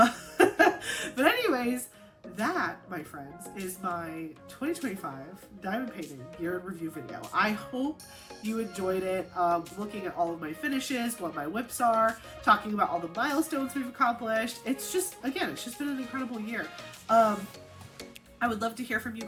anyways, that, my friends, is my 2025 diamond painting year in review video. I hope you enjoyed it, looking at all of my finishes, what my whips are, talking about all the milestones we've accomplished. It's just been an incredible year. I would love to hear from you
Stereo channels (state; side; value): identical; both; correlation 1.00